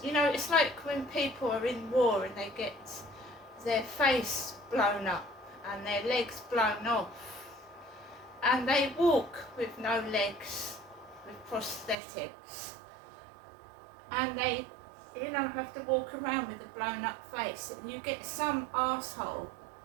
you know, it's like when people are in war and they get their face blown up and their legs blown off, and they walk with no legs, with prosthetics, and they, you know, have to walk around with a blown up face, and you get some arsehole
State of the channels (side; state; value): left; drops out; at 12.0 s